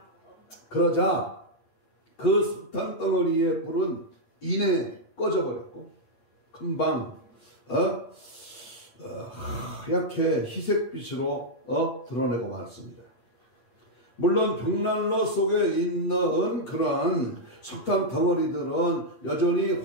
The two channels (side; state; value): right; late; 8.2 ms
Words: 그러자 그 석탄 덩어리의 불은 이내 꺼져버렸고 금방 하얗게 희색빛으로 드러내고 말았습니다. 물론 벽난로 속에 있는 그러한 석탄 덩어리들은 여전히